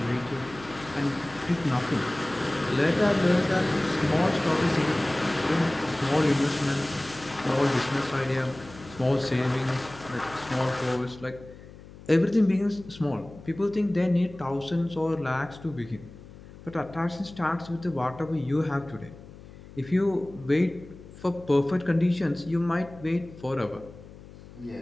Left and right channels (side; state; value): left; noise; hum, 18 dB below the sound